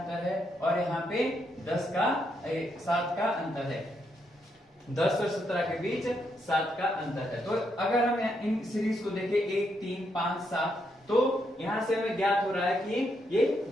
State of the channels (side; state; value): both; normal; correlation 0.79